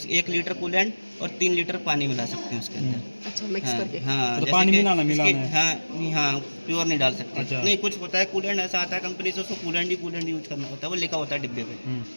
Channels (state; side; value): inverted; both; correlation -1.00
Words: 1 लीटर कूलेंट और 3 लीटर पानी मिला सकते हैं उसके अंदर। अच्छा मिक्स करके। हाँ तो जैसे पानी कि मिलाना इसके- है। हाँ प्योर नहीं डाल सकते। अच्छा। नहीं, कुछ होता है कूलेंट ऐसा आता है कंपनी से, उसको कूलेंट यूज करना होता है, वो लिखा होता है डिब्बे पे।